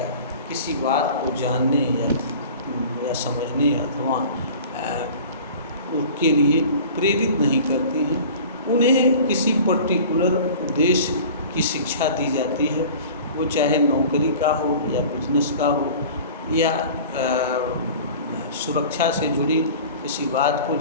किसी बात को जानने या समझने अथवा उसके लिए प्रेरित नहीं करती हैं। उन्हें किसी पर्टिकुलर उद्देश्य की शिक्षा दी जाती है, वो चाहे नौकरी का हो या बिजनेस का हो या सुरक्षा से जुड़ी किसी बात को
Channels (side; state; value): both; inverted; correlation -0.41